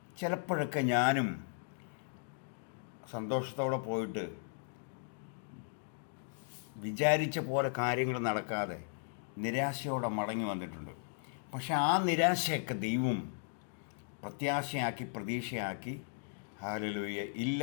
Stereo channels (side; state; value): right; silent; digital silence